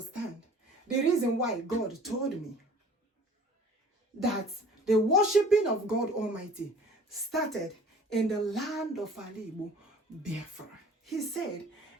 the reason why God told me that the worshiping of God Almighty started in the land of Igbo Biafra. He said,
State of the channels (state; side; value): normal; both; correlation 0.48